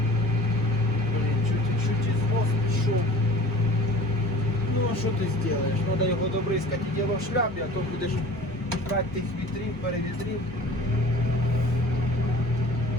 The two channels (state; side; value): normal; both; correlation 0.43